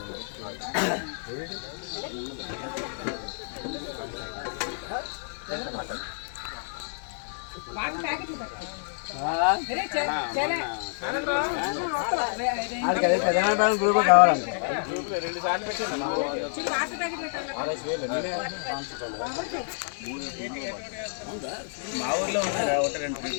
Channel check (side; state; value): right; silent; digital silence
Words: గ్రూప్ కావాలండి మా ఊర్లో ఉన్నారా ఒకటి రెండు